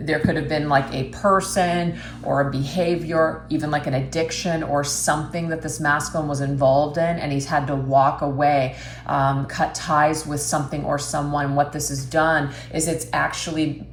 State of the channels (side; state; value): both; identical; correlation 1.00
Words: could have been like a person or a behavior, even like an addiction or something that this masculine was involved in, and he's had to walk away, cut ties with something or someone. What this has done is it's actually